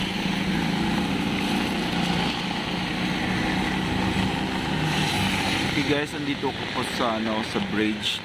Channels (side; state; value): both; identical; correlation 1.00